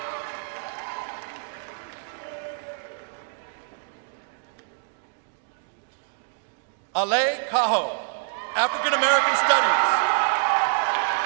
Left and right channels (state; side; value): silent; left; digital silence